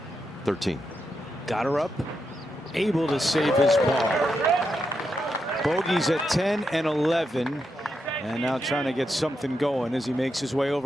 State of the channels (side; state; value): both; normal; correlation 0.84